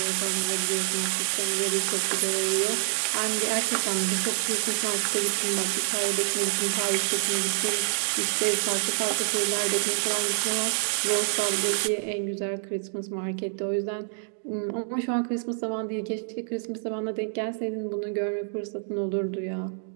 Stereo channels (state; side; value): silent; left; digital silence